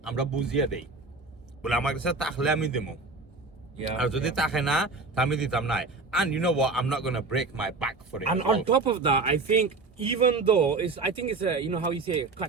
আমরা বুঝিয়ে দেই বলে আমার কাছে তাহলে আমি দেবো আর যদি তাকে না আমি দিতাম না and you know what I'm not going to break my back for it And on top of that, I think even though I think it's a, you know how you say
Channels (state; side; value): quieter; left; 3.7 dB